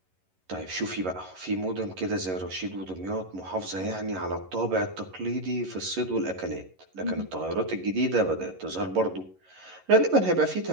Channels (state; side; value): late; left; 11 ms